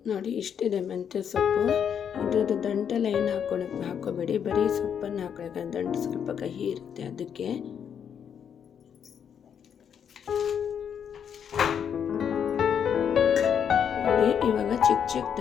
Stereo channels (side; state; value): right; quieter; 8.0 dB